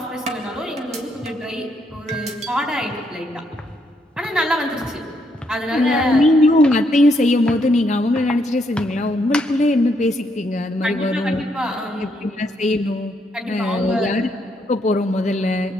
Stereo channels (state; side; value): normal; both; correlation 0.75